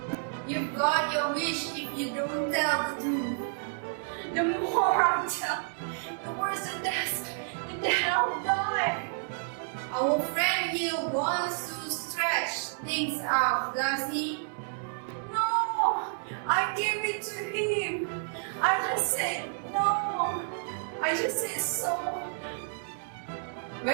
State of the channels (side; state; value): left; silent; digital silence